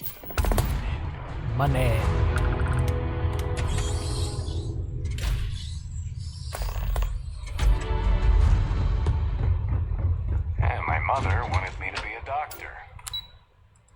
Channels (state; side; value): identical; both; correlation 1.00